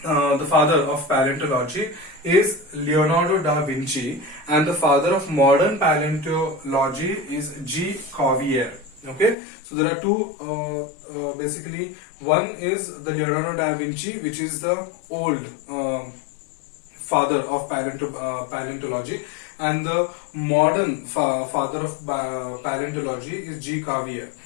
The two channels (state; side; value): drops out; right; at 9.3 s